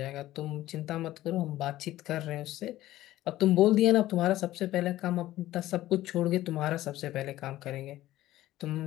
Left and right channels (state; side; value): quieter; right; 15.1 dB